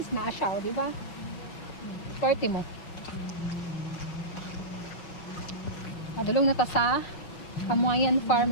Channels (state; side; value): late; right; 5.8 ms